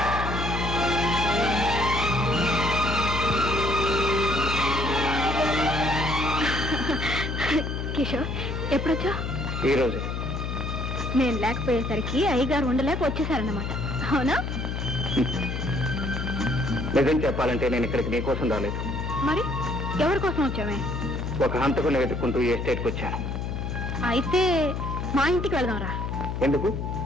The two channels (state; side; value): noise; left; hum, 3 dB below the sound